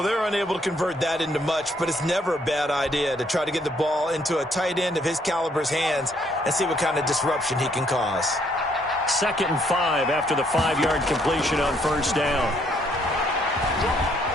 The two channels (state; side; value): normal; both; correlation 0.68